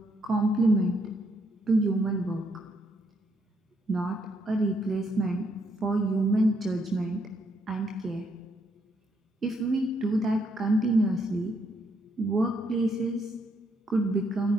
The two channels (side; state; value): both; normal; correlation 0.74